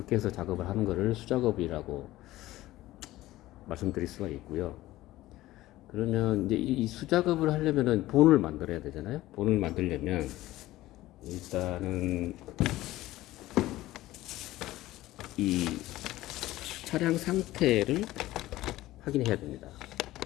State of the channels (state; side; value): quieter; right; 16.4 dB